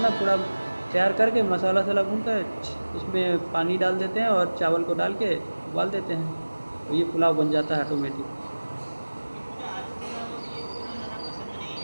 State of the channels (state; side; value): inverted; both; correlation -1.00